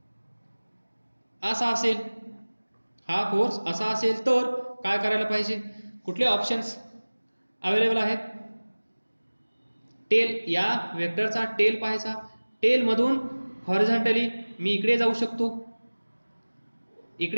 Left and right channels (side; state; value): both; inverted; correlation -1.00